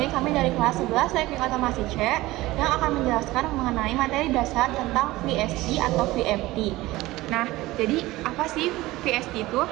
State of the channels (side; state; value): left; quieter; 18.5 dB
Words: kami dari kelas 11 Teknik Otomasi C yang akan menjelaskan mengenai materi dasar tentang VSD atau VFD. Nah, jadi apa sih VSD itu?